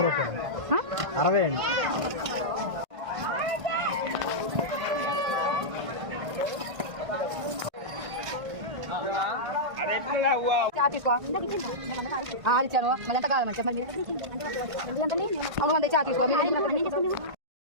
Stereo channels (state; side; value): late; left; 1.5 ms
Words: 60 అండి. ఇచ్చాను మళ్ళీ ఎంత కావాలమ్మా చెప్పండి. ఎందుకంటే అవును చా తీసుకో.